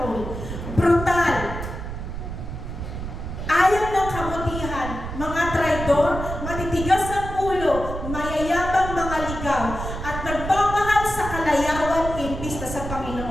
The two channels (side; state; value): right; noise; rumble, 7 dB below the sound